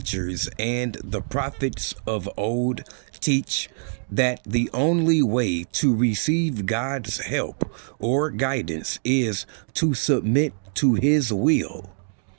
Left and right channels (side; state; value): left; silent; digital silence